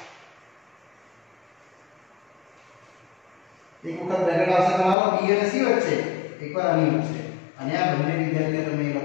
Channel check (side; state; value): right; drops out; at 5.0 s